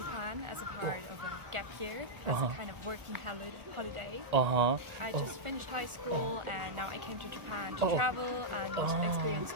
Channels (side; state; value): left; late; 1.4 ms